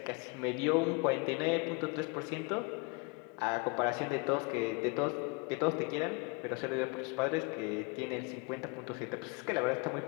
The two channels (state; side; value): quieter; right; 31.3 dB